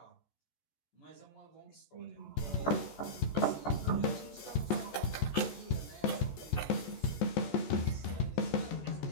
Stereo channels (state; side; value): late; right; 14 ms